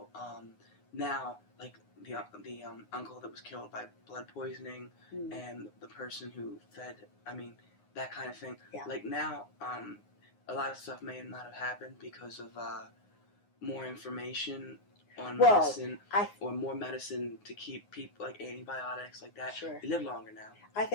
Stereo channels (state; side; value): late; right; 9.7 ms